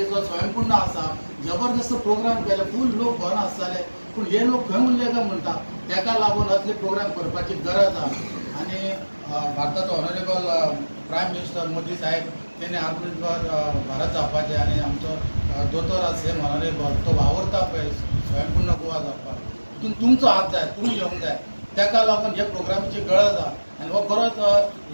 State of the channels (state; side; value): inverted; both; correlation -1.00